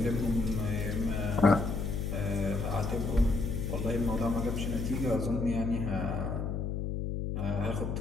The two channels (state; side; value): noise; left; hum, 2 dB below the sound